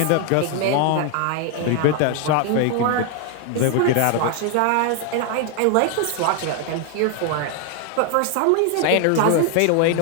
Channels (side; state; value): both; different; correlation 0.01